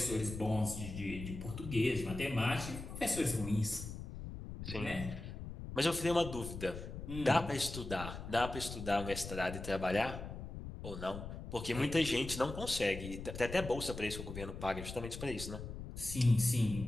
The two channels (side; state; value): left; noise; rumble, 9 dB below the sound